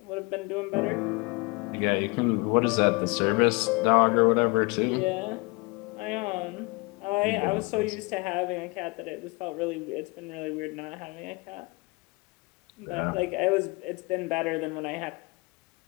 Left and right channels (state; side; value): quieter; right; 27.2 dB